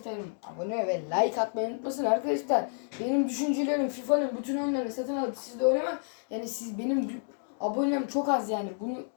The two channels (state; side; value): silent; right; digital silence